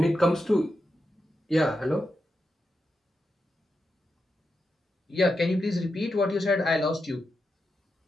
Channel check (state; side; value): normal; both; correlation 0.87